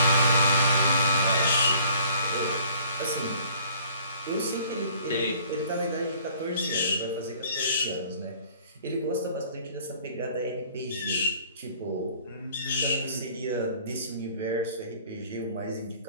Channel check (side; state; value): both; inverted; correlation -0.55